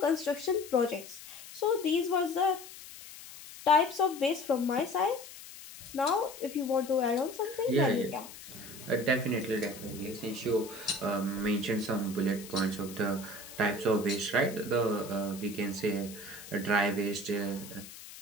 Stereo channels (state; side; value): noise; left; hiss, 15 dB below the sound